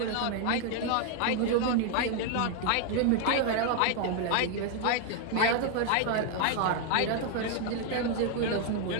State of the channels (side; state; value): both; different; correlation 0.00